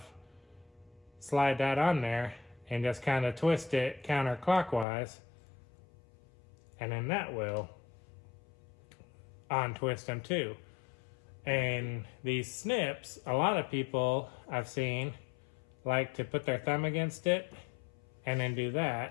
slide that on there, and just kind of twist it counterclockwise, and then that will untwist them too. And these snips, a lot of people I've seen like to put their thumb against it and then do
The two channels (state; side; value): drops out; right; at 4.9 s